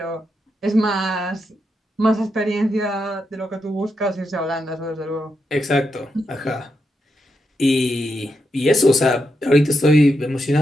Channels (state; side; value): normal; both; correlation 0.84